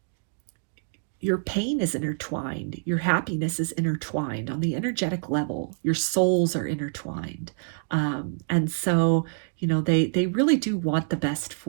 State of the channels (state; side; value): silent; left; digital silence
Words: your pain is intertwined, your happiness is intertwined on the energetic level, your souls are intertwined. And so, you know, they really do want the best